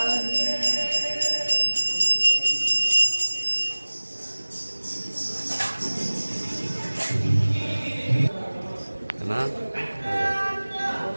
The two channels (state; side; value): inverted; both; correlation -1.00